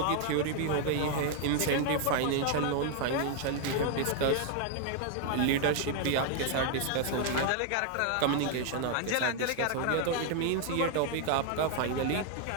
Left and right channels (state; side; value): different; both; correlation 0.00